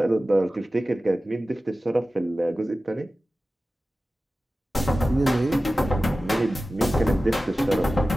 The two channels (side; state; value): both; normal; correlation 0.95